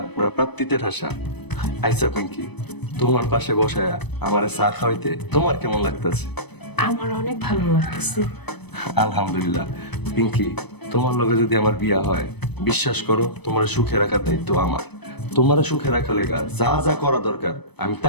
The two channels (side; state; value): right; late; 0.99 ms